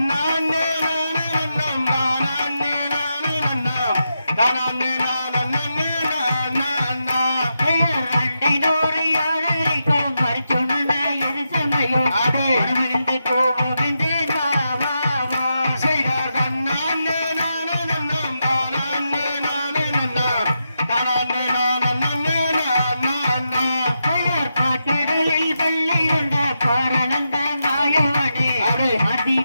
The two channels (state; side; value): inverted; both; correlation -0.86